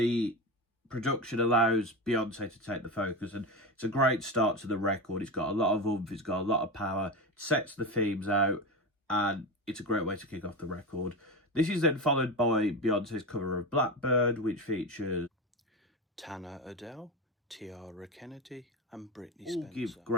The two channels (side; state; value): both; normal; correlation 0.21